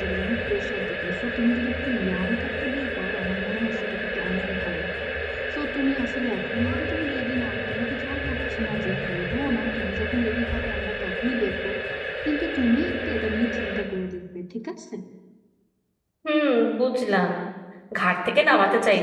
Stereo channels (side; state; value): both; identical; correlation 1.00